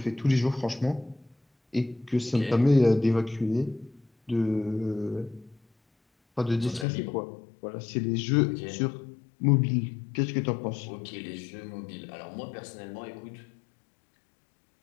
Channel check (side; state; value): right; drops out; at 6.9 s